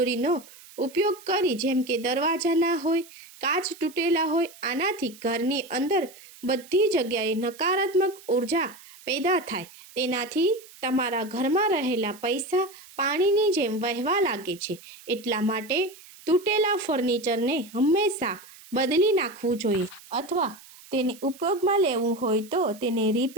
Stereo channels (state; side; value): noise; right; hiss, 21 dB below the sound